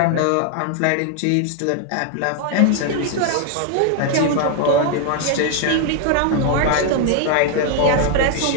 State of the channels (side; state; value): both; different; correlation 0.00